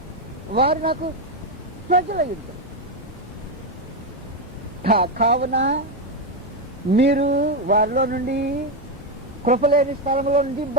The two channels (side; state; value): both; normal; correlation 0.07